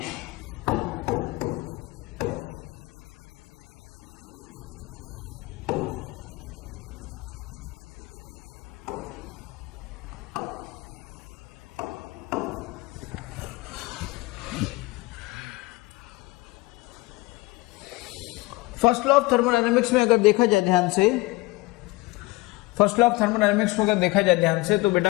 फर्स्ट लॉ ऑफ थर्मोडायनेमिक्स में अगर देखा जाए ध्यान से, फर्स्ट लॉ ऑफ थर्मोडायनेमिक्स को अगर देखा जाए ध्यान से, तो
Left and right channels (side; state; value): right; quieter; 21.6 dB